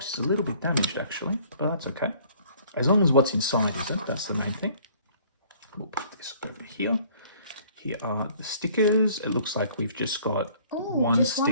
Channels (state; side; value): inverted; both; correlation -0.56